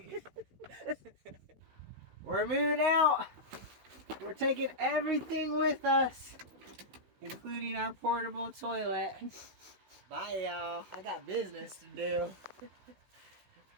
We're moving out. We're taking everything with us, including our portable toilet. Bye, y'all. I got business to do.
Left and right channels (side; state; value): left; late; 16 ms